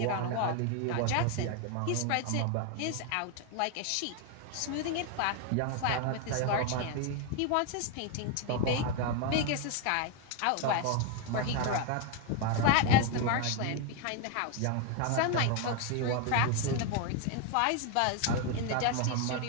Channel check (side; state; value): both; different; correlation 0.01